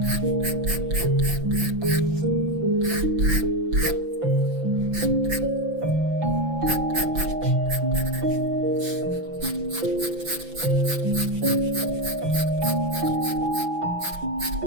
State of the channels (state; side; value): late; left; 5.9 ms